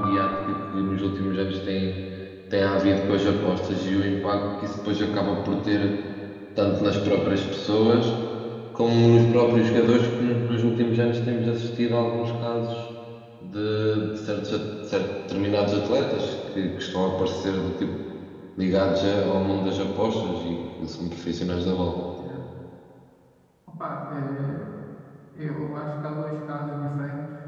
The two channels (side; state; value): both; identical; correlation 1.00